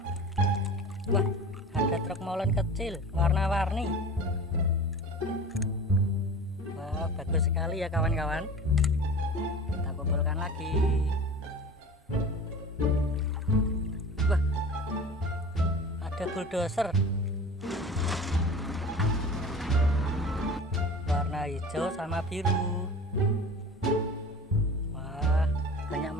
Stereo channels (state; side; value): normal; both; correlation 0.37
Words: Wah, ada truk molen kecil warna-warni. Wah, bagus sekali ya kawan-kawan. Kita kumpulkan lagi. Wah, ada bulldozer warna hijau sama biru. Wah, banyak